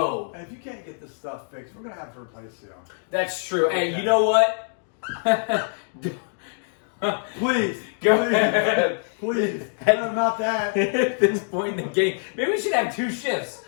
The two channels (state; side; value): silent; right; digital silence